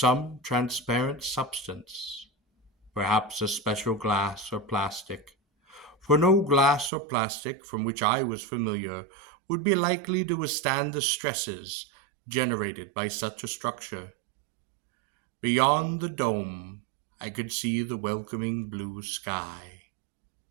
transparent substance, perhaps a special glass or plastic, for no glass or plastic from which I was familiar would be likely to withstand the stresses generated by such a structure. Beyond the dome, I could see the welcoming blue sky.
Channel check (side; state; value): left; drops out; at 6.9 s